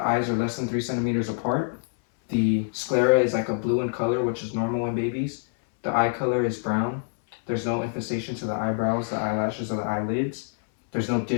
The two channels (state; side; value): silent; right; digital silence